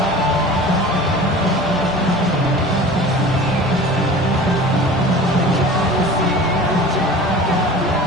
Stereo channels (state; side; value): normal; both; correlation 0.39